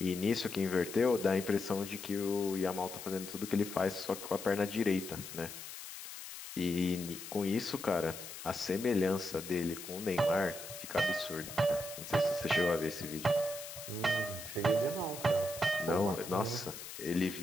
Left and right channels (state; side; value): noise; left; hiss, 11 dB below the sound